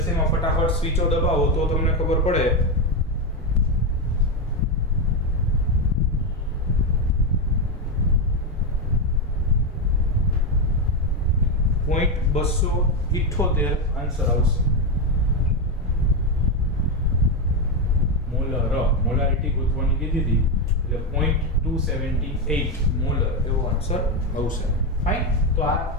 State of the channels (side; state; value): both; normal; correlation 0.09